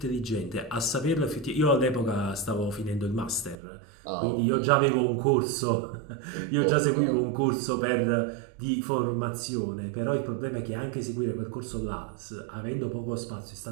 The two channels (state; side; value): drops out; left; at 3.6 s